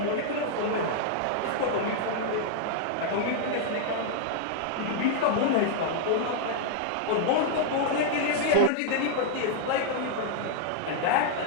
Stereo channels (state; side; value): different; both; correlation -0.01